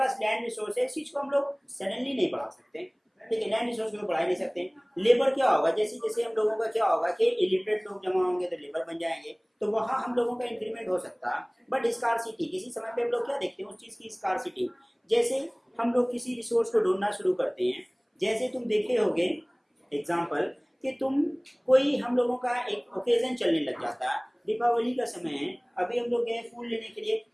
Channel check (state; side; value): identical; both; correlation 1.00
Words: लैंड रिसोर्स है इस चीज को हम लोग सडनली नहीं बढ़ा सकते ठीक है लैंड रिसोर्स को बढ़ा नहीं सकते लेबर क्या होगा जैसे जैसे हम लोगों का क्या होगा कि इलिटरेट लोग जमा होंगे तो लेबर बन जाएंगे तो वहाँ हम लोगों का इंक्रीमेंट हो सकता है बट स्कारसिटी किसी समय पे हम लोग क्या देखते हैं उस चीज की स्कारसिटी जैसे हम लोग किसी रिसोर्स को ढूंढना शुरू करते हैं जैसे तुम देखे होगे एग्जाम्पल कि तुम कोई हम लोगों का एक ओकेजन चलने लग जाता है दीपावली का समय है अभी हम लोग गए फूल लेने के लिए